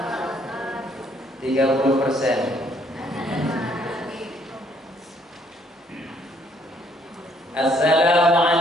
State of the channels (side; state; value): both; normal; correlation 0.66